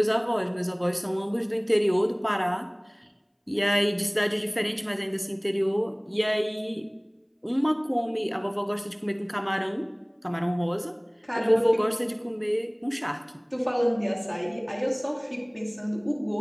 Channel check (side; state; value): both; identical; correlation 1.00